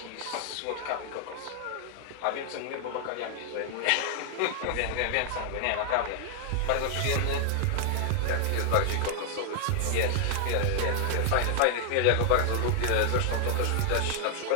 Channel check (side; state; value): both; different; correlation 0.00